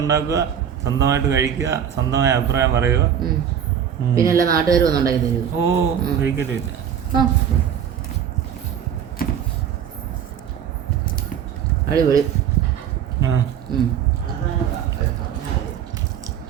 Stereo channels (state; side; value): quieter; left; 8.8 dB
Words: ഉണ്ടാക്കുക, സ്വന്തമായിട്ട് കഴിക്കുക, സ്വന്തമായ അഭിപ്രായം പറയുക. പിന്നെ എല്ലാ നാട്ടുകാരും ഒന്നും ഉണ്ടാക്കി തരുമോ? ഓ, കഴിക്കലില്ല. അടിപൊളി.